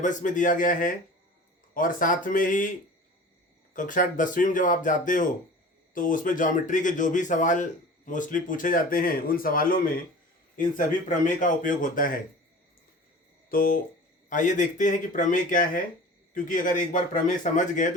में दिया गया है और साथ में ही कक्षा 10वीं में जब आप जाते हो तो उसमें ज्योमेट्री के जो भी सवाल मोस्टली पूछे जाते हैं उन सवालों में इन सभी प्रमेय का उपयोग होता है। तो आइए देखते हैं कि प्रमेय क्या है, क्योंकि अगर एक बार प्रमेय समझ गए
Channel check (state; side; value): normal; both; correlation 0.40